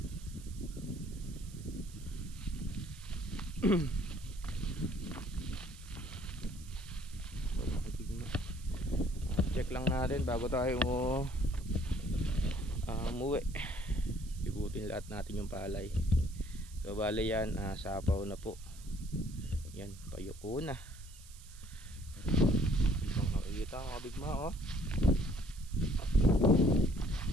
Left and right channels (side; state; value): right; noise; hiss, 20 dB below the sound